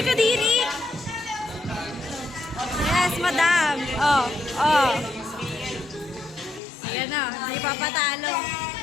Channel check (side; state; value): right; drops out; at 6.6 s